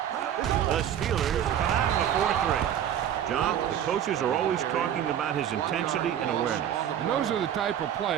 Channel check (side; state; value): left; quieter; 10.0 dB